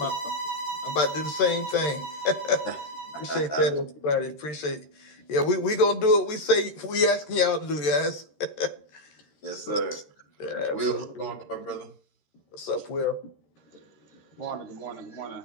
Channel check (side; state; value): right; late; 13 ms